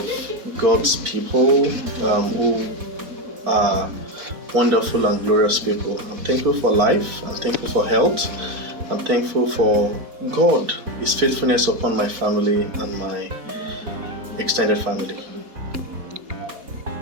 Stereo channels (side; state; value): left; late; 4.1 ms